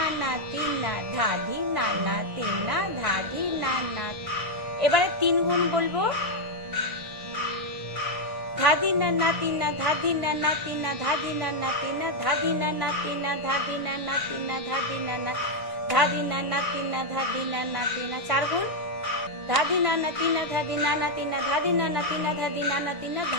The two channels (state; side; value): late; left; 1.5 ms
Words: তিনা, ধাধি নানা তিনা, ধাধি নানা। এবারে 3 গুণ বলবো, ধাদি নানা তিনা, ধাদি নানা তিনা, ধাদি নানা তিনা, ধাদি নানা তিনা, ধাদি নানা তিনা, ধাদি নানা, ধাদি নানা তিনা, ধাদি নানা তিনা। 4 গুণ, ধাদি নানা তিনা ধাদি নানা তিনা ধাদি নানা তিনা ধাদি নানা তিনা